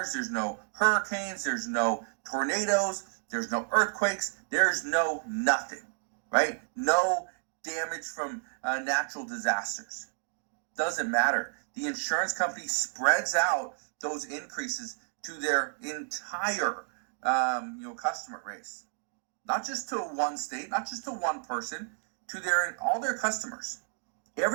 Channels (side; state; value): left; silent; digital silence